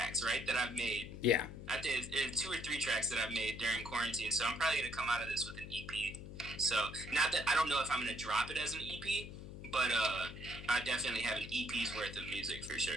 right, that I've made. Yeah. I think it's 2 or 3 tracks that I've made during quarantine, so I'm probably gonna come out of this with an EP. So not that I don't know if I'm gonna drop it as an EP, but I definitely have an EP's worth of music for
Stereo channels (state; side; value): noise; left; hum, 11 dB below the sound